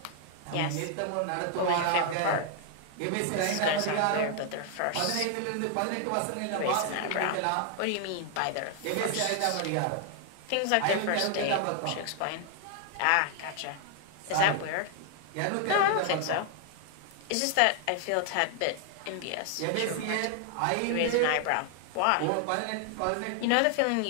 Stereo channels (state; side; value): different; both; correlation 0.00